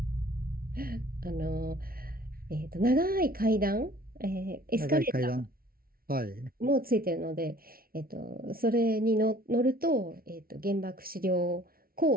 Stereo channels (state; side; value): late; left; 0.43 ms